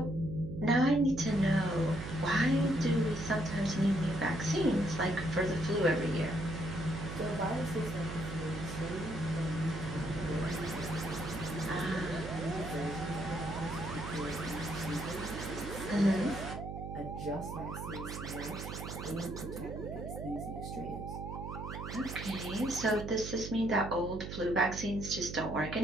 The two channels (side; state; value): right; noise; hum, 7 dB below the sound